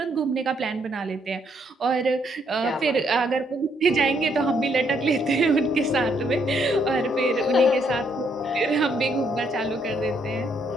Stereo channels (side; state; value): both; normal; correlation 0.72